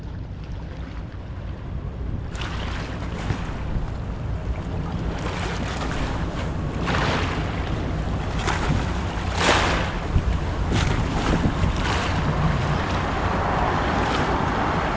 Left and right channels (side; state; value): both; identical; correlation 1.00